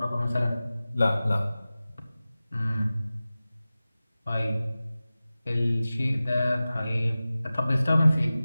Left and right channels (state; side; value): inverted; both; correlation -0.97